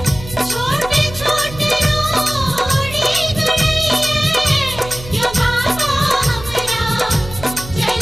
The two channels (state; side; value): noise; right; hum, 14 dB below the sound